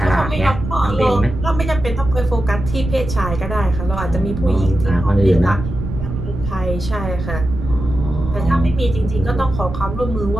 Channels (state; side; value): noise; right; rumble, 7 dB below the sound